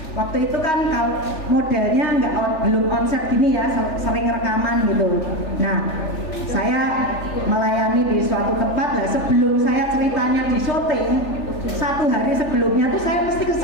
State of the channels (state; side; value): late; right; 3.4 ms